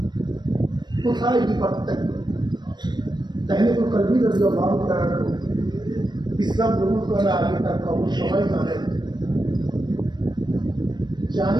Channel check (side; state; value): left; late; 0.21 ms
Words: কোথায় কি পার্থক্য? তাহমিদুল কলবি রাদিয়াল্লাহু তাআলা ইসলাম গ্রহণ করার আগে তার খবর সবাই জানেন।